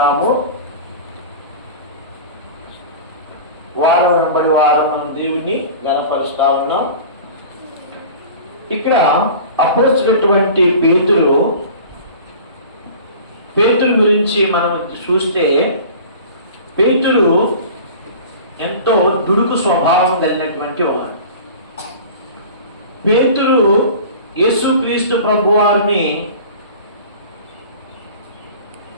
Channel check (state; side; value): inverted; both; correlation -0.39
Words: వారం వెంబడి వారం మనం దేవుణ్ణి గణపరుస్తా ఉన్నాం. ఇక్కడ అపోస్తలుడైనటువంటి పేతురు గురించి మనం చూస్తే, పేతురు ఎంతో దుడుకు స్వభావం కలిగినటువంటి వాడు. పేతురు యేసుక్రీస్తు ప్రభువారిని